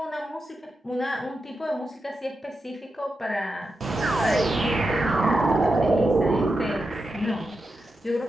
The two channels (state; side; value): normal; both; correlation 0.89